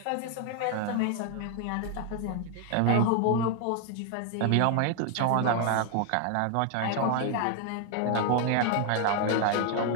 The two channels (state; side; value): different; both; correlation 0.00